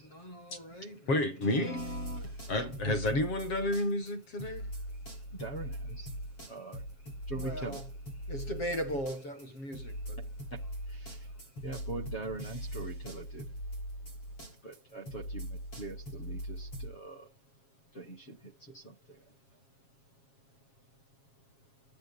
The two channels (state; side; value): late; right; 7.4 ms